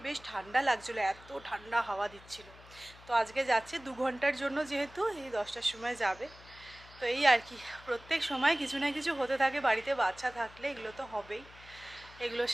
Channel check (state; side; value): noise; left; hum, 21 dB below the sound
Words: বেশ ঠান্ডা লাগছিলো, এত ঠান্ডা হাওয়া দিচ্ছিল। তো আজকে যাচ্ছে 2 ঘন্টার জন্য, যেহেতু এই 10টার সময় যাবে। তো এই আর কি, প্রত্যেক সময় কিছু না কিছু হতে থাকে বাড়িতে, বাচ্চা থাকলে এগুলো তো হবেই, এগুলোর